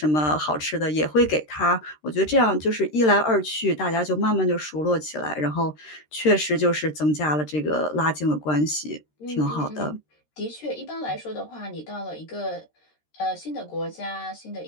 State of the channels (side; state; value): right; late; 13 ms